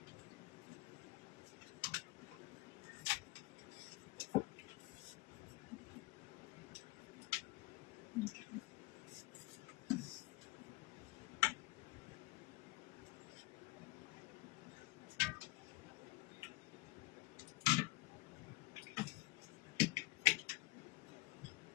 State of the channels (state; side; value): quieter; right; 20.9 dB